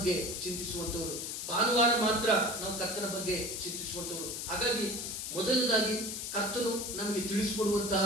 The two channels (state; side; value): noise; left; hiss, 5 dB below the sound